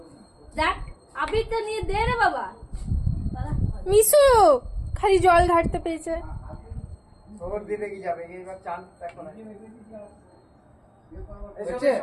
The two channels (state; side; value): identical; both; correlation 1.00